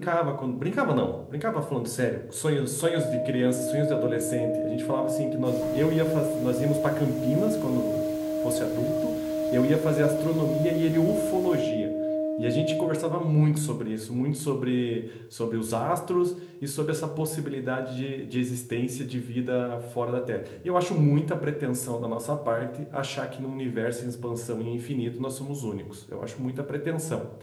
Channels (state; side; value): identical; both; correlation 1.00